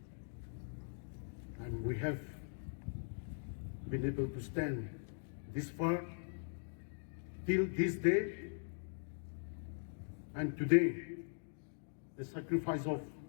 and we have been able to stand this far till this day. And today, the sacrifice of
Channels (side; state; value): right; silent; digital silence